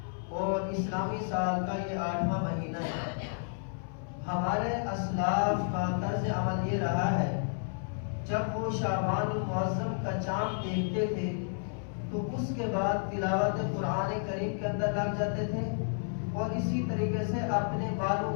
اور اسلامی سال کا یہ 8واں مہینہ ہے۔ ہمارے اسلاف کا طرز عمل یہ رہا ہے، جب وہ شعبان المعظم کا چاند دیکھتے تھے تو اس کے بعد تلاوت قرآن کریم کے اندر لگ جاتے تھے اور اسی طریقے سے اپنے مالوں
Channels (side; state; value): right; silent; 57 dB below the other